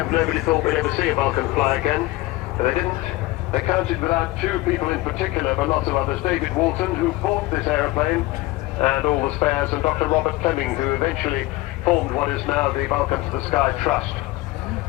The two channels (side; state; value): right; quieter; 19.4 dB